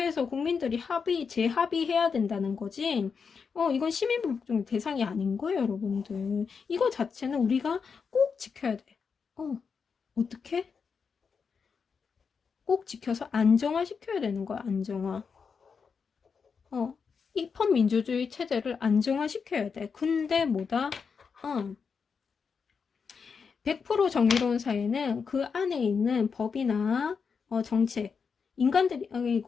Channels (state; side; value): quieter; right; 5.8 dB